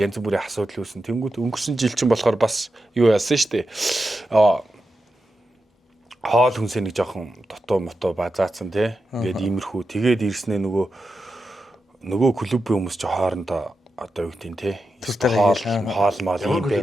янз бүрийн асуудал үүсэн. Тэнгүүд өнгөрсөн жил чинь болохоор бас юу яасан штэ. Хоол хүнсээ нэг жоохон дотоо мото базаацсан тий. Ингээд иймэрхүү. Тэгээд ирснээ нөгөө клубын хүмүүс ч хоорондоо одоо юу гэдэг тий. Хоол мал юм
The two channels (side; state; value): both; normal; correlation 0.89